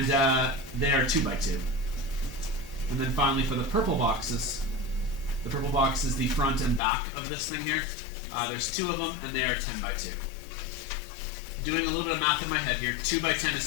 they are 2 by 2. And then finally for the purple boxes is the front and back of this thing here. There's 2 of them and they are 10 by 2. Doing a little bit of math in my head here. 2 by 10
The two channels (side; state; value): right; drops out; at 6.8 s